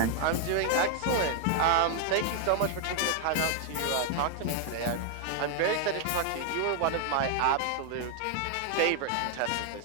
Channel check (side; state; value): both; different; correlation 0.00